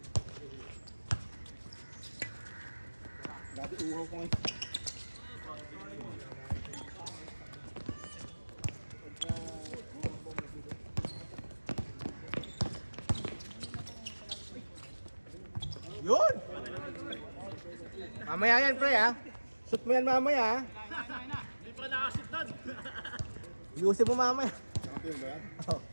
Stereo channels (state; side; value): inverted; both; correlation -1.00